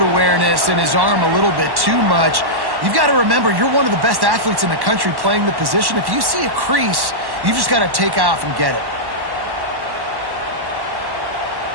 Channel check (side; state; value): left; late; 1.1 ms